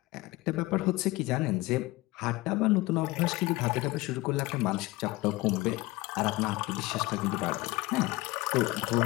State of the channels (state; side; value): quieter; right; 20.8 dB